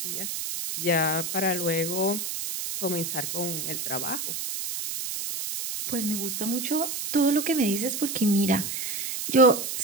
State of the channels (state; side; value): noise; right; hiss, 4 dB below the sound